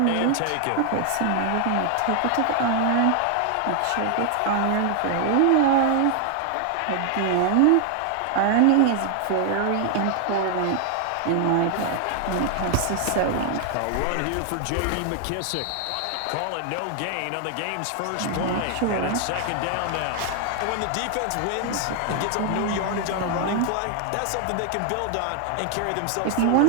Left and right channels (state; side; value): different; both; correlation 0.00